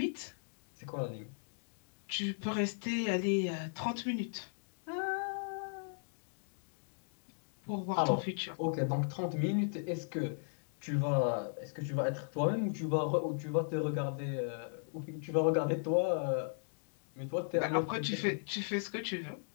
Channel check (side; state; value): right; silent; digital silence